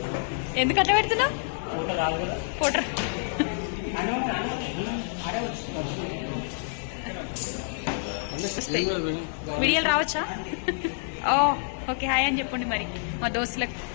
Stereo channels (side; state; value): right; silent; digital silence